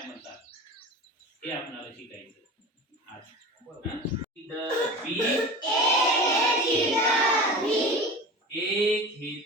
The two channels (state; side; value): normal; both; correlation 0.33